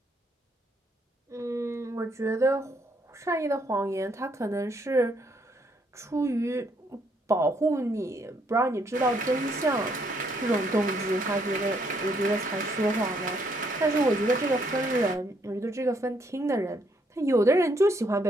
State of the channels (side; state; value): both; normal; correlation 0.71